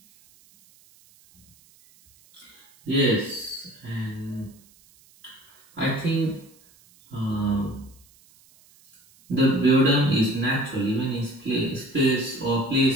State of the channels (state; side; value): noise; right; hiss, 29 dB below the sound